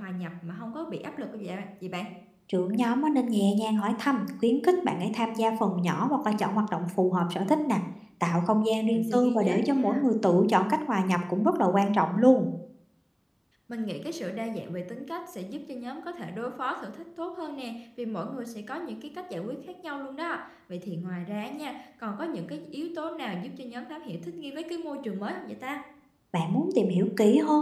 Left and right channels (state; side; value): identical; both; correlation 1.00